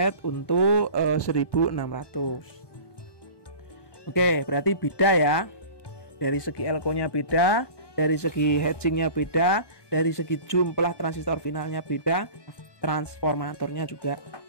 untuk 1600. Oke, berarti beda ya. Dari segi elko-nya beda, dari segi hatchingnya beda, dari segi jumlah transistor finalnya beda, transformatornya juga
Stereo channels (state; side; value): late; right; 1.2 ms